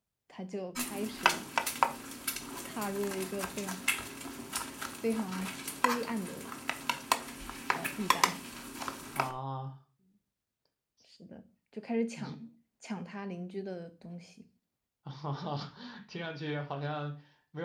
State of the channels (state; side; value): identical; both; correlation 1.00